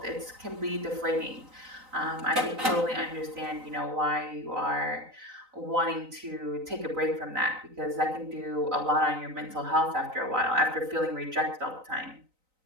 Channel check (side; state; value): left; late; 3.9 ms